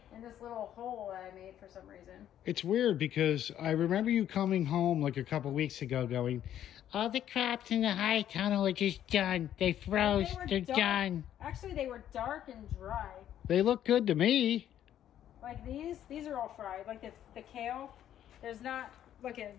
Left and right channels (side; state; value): right; quieter; 11.0 dB